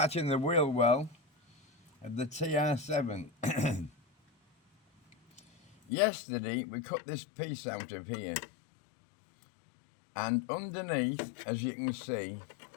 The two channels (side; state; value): right; drops out; at 5.8 s